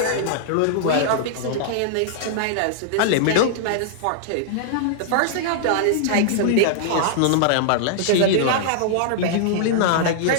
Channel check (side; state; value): both; different; correlation -0.01